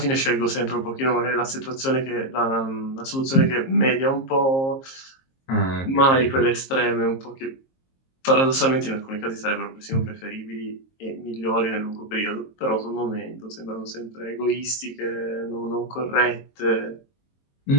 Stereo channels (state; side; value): late; right; 22 ms